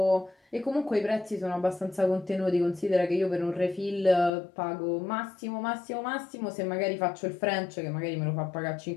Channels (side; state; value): right; drops out; at 4.3 s